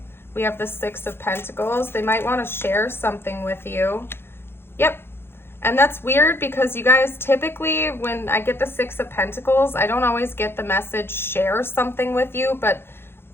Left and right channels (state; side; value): late; right; 0.11 ms